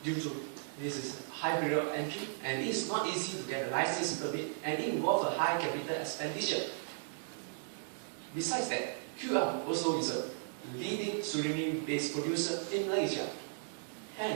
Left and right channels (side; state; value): left; silent; digital silence